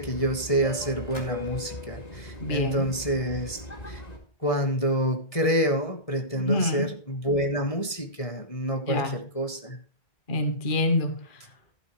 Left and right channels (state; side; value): late; right; 1.7 ms